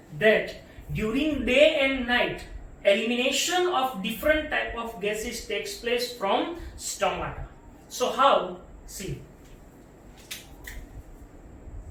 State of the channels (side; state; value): both; identical; correlation 1.00